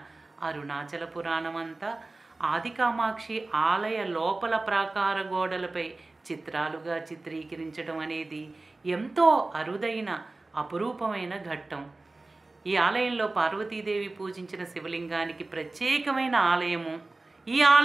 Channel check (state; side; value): quieter; left; 3.2 dB